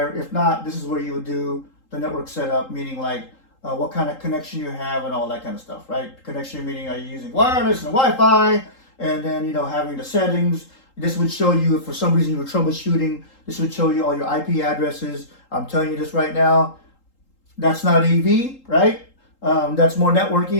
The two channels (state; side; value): late; right; 3.8 ms